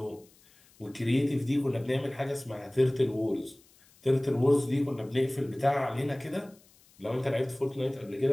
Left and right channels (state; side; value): noise; left; hiss, 29 dB below the sound